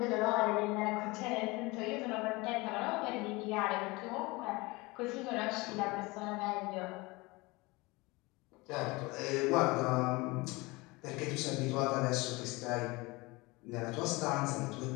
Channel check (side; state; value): right; quieter; 23.6 dB